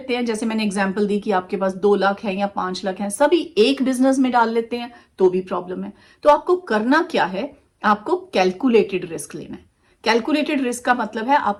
हैं, जैसे मैंने एग्जांपल दी कि आपके पास 2 लाख है या 5 लाख है, सभी एक बिजनेस में डाल लेते हैं तो भी प्रॉब्लम है। तो आपको करना क्या है, आपको कैलकुलेटेड रिस्क लेना है। कैलकुलेटेड रिस्क का मतलब है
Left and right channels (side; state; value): both; identical; correlation 1.00